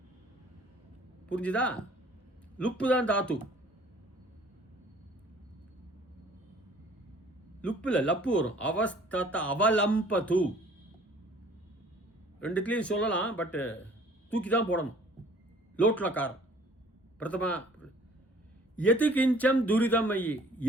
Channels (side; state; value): both; normal; correlation 0.53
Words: புரிஞ்சுதா? லுப்பு தான் தாத்து. லுப்புல லப்பு வரும். அவஸ்தத அவலம்பது ரெண்டுத்துலையும் சொல்லலாம், பட் தூக்கி தான் போடணும். லோட்லக்காரம் பிரதமா. எது கிஞ்சம் துரிதம் ஐயி.